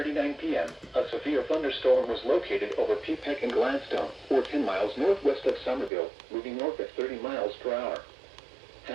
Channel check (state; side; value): drops out; left; at 5.9 s